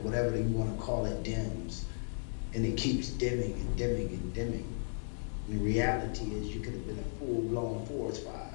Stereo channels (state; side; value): silent; right; digital silence